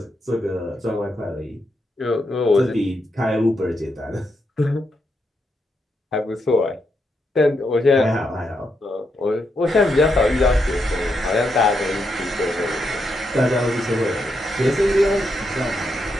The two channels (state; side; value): normal; both; correlation 0.81